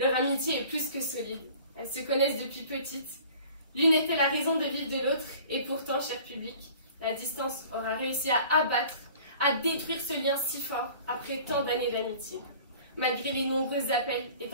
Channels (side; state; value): both; inverted; correlation -0.47